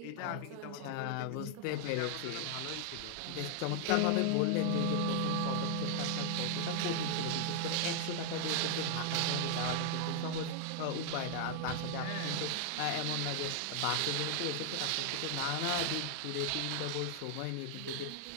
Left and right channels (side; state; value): both; different; correlation 0.00